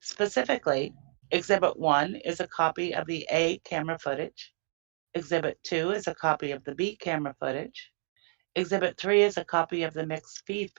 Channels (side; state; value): left; silent; digital silence